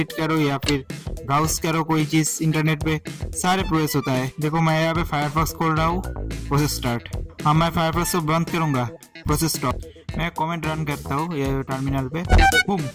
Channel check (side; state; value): both; identical; correlation 1.00